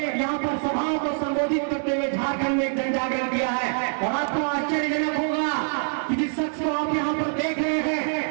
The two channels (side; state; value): left; silent; 62 dB below the other